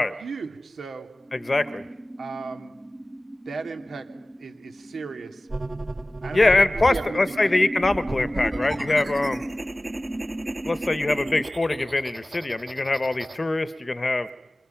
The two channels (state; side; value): normal; both; correlation 0.98